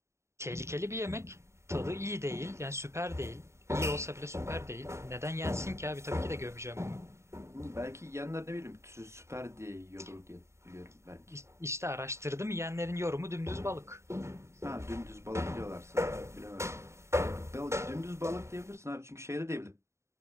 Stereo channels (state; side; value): late; left; 0.13 ms